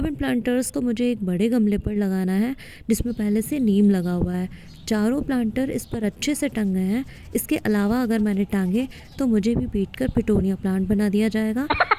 इन प्लांटर्स को मुझे एक बड़े गमले पर लगाना है जिसमें पहले से नीम लगा हुआ है। चारों प्लांटर इस पर अच्छे से टंग गए हैं। इसके अलावा अगर मैंने टांगे तो मुझे भी पीट कर पिटोनिया प्लांट बना दिया जाएगा।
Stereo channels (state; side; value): identical; both; correlation 1.00